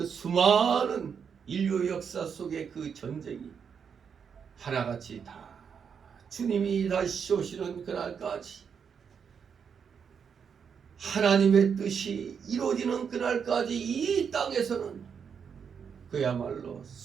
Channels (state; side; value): quieter; left; 6.9 dB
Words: 수많은 인류 역사 속의 그 전쟁이 하나같이 다 주님이 다시 오시는 그날까지 하나님의 뜻이 이루어지는 그날까지 이 땅에서는 그야말로